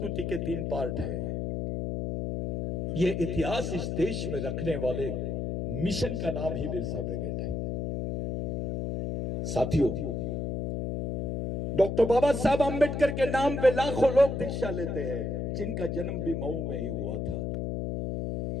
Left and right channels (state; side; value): noise; left; hum, 2 dB below the sound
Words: के 3 पार्ट है। ये इतिहास इस देश में रखने वाले मिशन का नाम ही बिरसा ब्रिगेड है। साथियों, डॉक्टर बाबा साहब आंबेडकर के नाम पे लाखों लोग दीक्षा लेते हैं, जिनका जन्म भी मऊ में ही हुआ था।